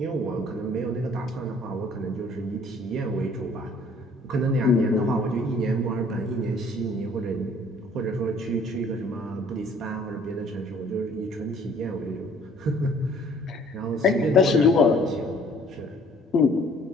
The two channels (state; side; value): normal; both; correlation 0.57